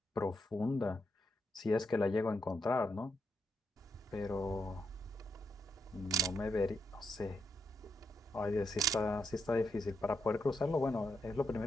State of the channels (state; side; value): normal; both; correlation 0.82